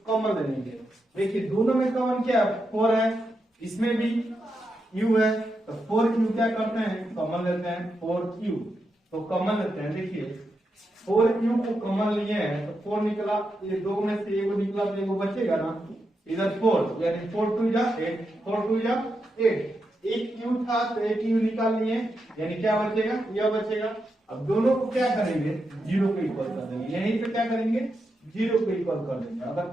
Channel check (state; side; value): normal; both; correlation 0.85